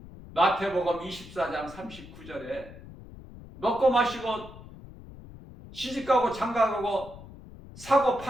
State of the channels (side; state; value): left; noise; rumble, 17 dB below the sound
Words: 마태복음 24장 39절에 먹고 마시고 시집가고 장가가고 사고